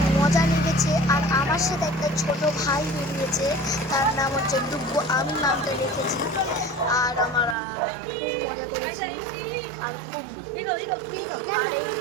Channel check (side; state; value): left; drops out; at 7.6 s